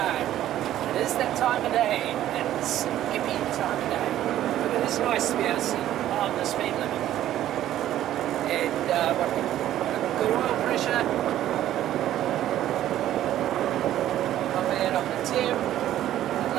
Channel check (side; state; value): left; quieter; 12.6 dB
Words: It is that time of day, and it's hippie time of day. But it is nice to be able to see on the speed limit. And good oil pressure. Not bad on the tip. I'd